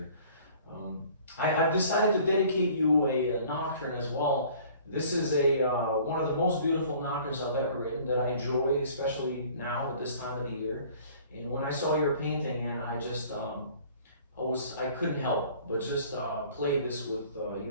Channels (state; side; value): inverted; both; correlation -0.51